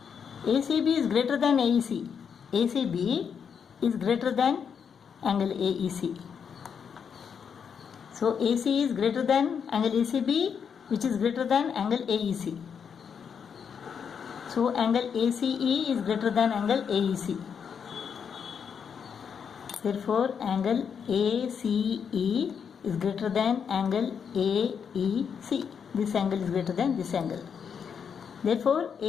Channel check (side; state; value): right; quieter; 7.0 dB